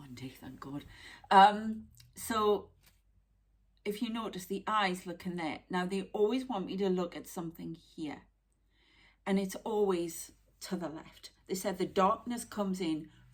day, thank God. So if you notice, the eyes look in there. Now they always want me to look at something here, and it's always to the left. They said the darkness comes in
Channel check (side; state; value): both; identical; correlation 1.00